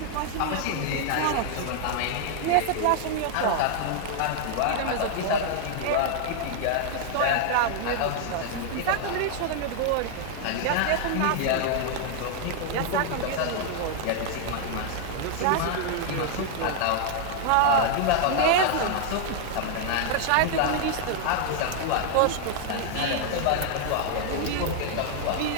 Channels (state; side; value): different; both; correlation 0.00